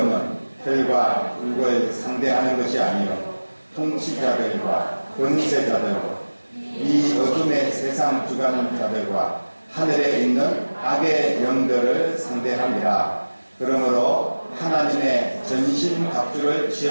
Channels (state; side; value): inverted; both; correlation -1.00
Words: 혈과 육을 상대하는 것이 아니요 통치자들과 권세자들과 이 어둠의 세상 주관자들과 하늘에 있는 악의 영들을 상대함이라. 그러므로 하나님의 전신 갑주를